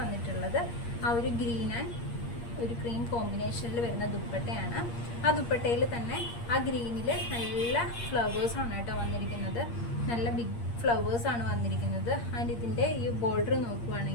ആ ഒരു ഗ്രീൻ ആൻഡ് ഒരു ക്രീം കോമ്പിനേഷനിൽ വരുന്ന ദുപ്പട്ടയാണ്. ആ ദുപ്പട്ടയിൽ തന്നെ ആ ഗ്രീനിൽ നല്ല ഫ്ലവേഴ്സാണ് കേട്ടോ വന്നിരിക്കുന്നത്, നല്ല ബിഗ് ഫ്ലവേഴ്സാണ് വന്നിരിക്കുന്നത്. ആൻഡ് ഇതിൻ്റെ ഈ ബോർഡർ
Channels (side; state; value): right; late; 8.6 ms